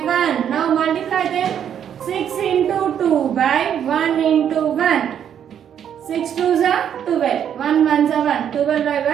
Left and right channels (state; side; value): quieter; left; 9.1 dB